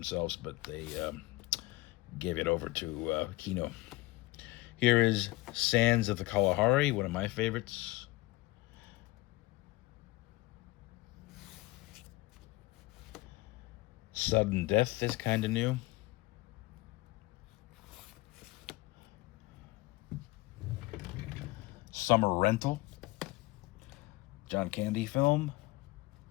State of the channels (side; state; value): right; quieter; 20.8 dB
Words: but they gave it over to Kino. Here is Sands of the Kalahari, one of my favorites. Sudden Death is kind of new. Summer Rental, John Candy film.